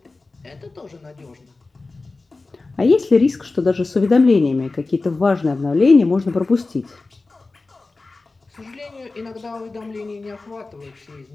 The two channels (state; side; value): quieter; right; 3.5 dB